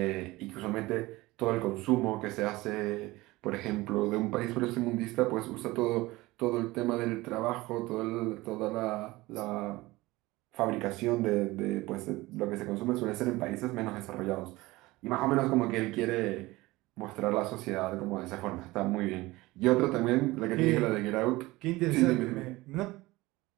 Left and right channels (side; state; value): left; quieter; 20.0 dB